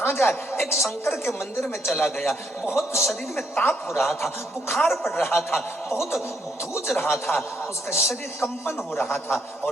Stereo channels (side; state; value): both; normal; correlation 0.73